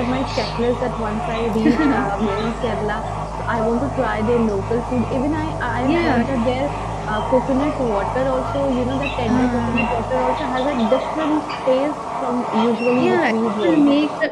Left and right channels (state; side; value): identical; both; correlation 1.00